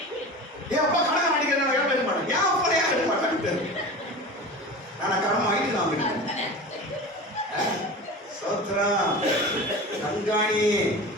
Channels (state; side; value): normal; both; correlation 0.32